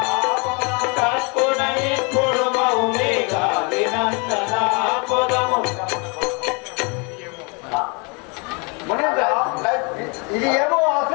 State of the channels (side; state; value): right; quieter; 32.3 dB